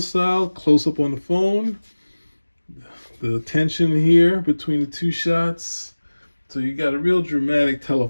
style, close up on the phone. The tension here between the two shots. So you got a real dramatic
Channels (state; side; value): inverted; both; correlation -1.00